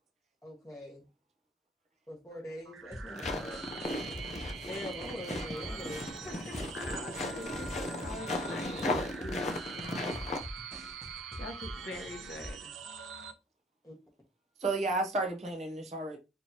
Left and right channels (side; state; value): both; normal; correlation 0.56